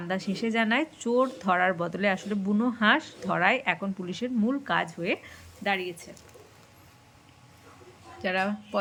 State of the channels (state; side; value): identical; both; correlation 1.00